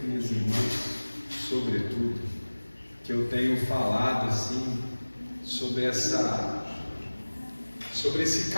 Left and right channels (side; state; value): both; inverted; correlation -1.00